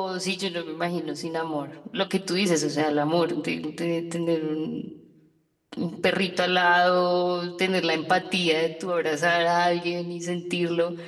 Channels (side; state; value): both; identical; correlation 1.00